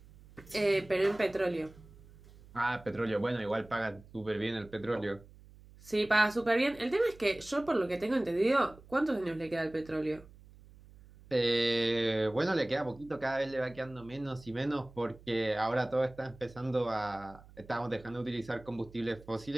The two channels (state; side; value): noise; right; hum, 22 dB below the sound